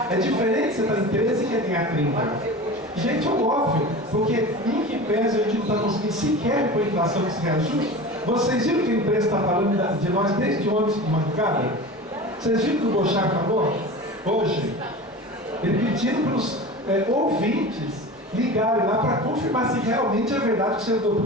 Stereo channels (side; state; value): both; normal; correlation 0.33